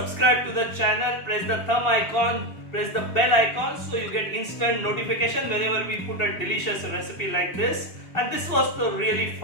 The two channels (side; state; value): right; late; 2.8 ms